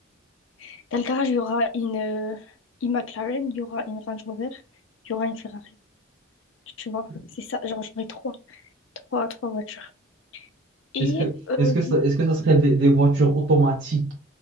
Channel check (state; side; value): normal; both; correlation 0.42